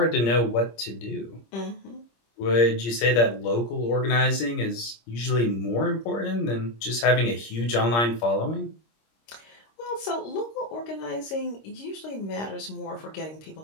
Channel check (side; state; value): right; late; 26 ms